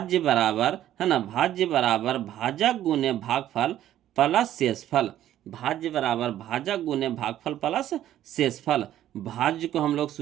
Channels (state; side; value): quieter; left; 12.3 dB